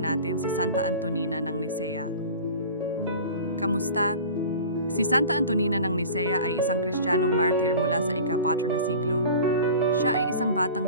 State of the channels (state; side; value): inverted; both; correlation -0.39